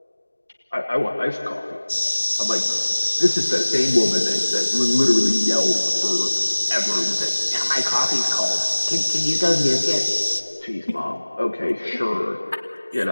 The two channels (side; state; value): both; inverted; correlation -1.00